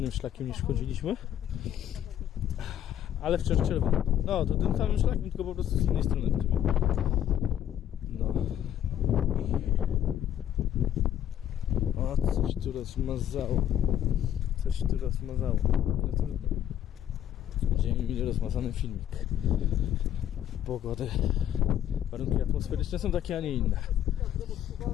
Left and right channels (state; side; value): quieter; right; 10.8 dB